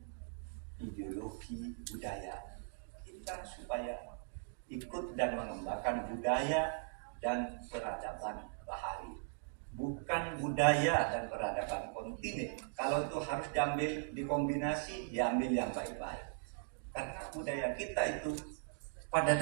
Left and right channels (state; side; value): silent; left; digital silence